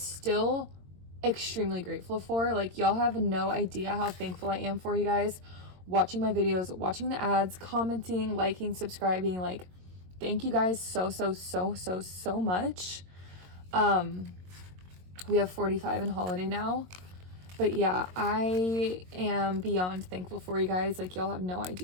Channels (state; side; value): late; left; 22 ms